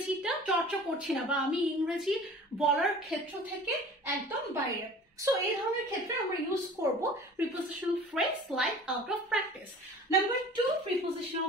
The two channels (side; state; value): both; normal; correlation 0.44